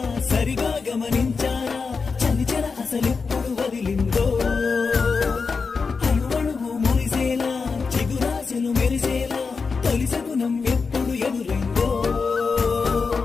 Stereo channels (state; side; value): quieter; right; 4.9 dB